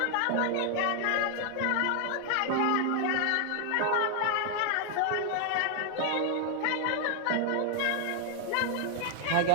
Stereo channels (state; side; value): different; both; correlation 0.00